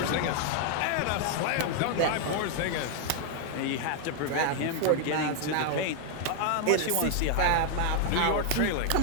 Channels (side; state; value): both; different; correlation 0.00